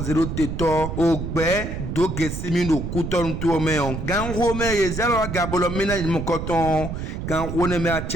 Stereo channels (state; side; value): noise; right; rumble, 5 dB below the sound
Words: teto ogbe Dogesimi no kuton to me on gan ho me ye zelo gabolo mina mo koton gan ho ne me a